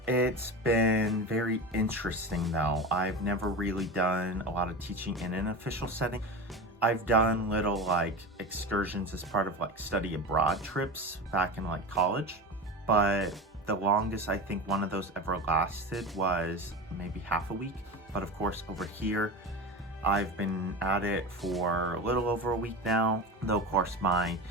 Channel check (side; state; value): both; normal; correlation 0.26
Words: It's been very interesting though. I've never really done a lot of teaching in an official setting. I've done little like excursions as part of like study abroad trips back in like college, but the longest I think one of those ever lasted was maybe half a week. But of course over here, I've been at it for a little over a week now, though of course my